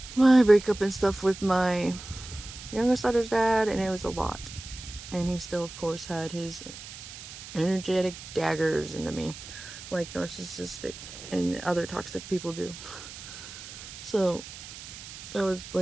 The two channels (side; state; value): right; noise; hiss, 13 dB below the sound